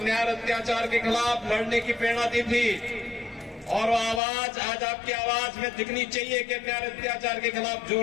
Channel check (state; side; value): drops out; right; at 4.2 s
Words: अत्याचार के खिलाफ लड़ने की प्रेरणा दी थी और वो आवाज आज आपकी आवाज में दिखनी चाहिए कि अन्याय अत्याचार के खिलाफ